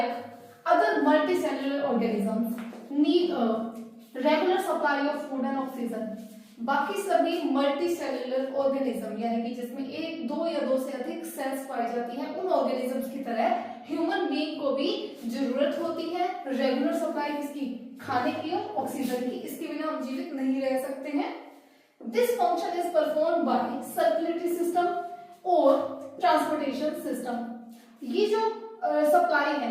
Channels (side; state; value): both; identical; correlation 1.00